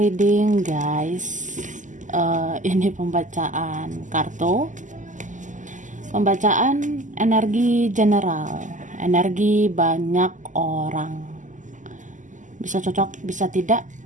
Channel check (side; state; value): left; late; 0.37 ms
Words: guys. Ini pembacaan kartu. Pembacaan energi general. Energi banyak orang. Bisa cocok, bisa tidak.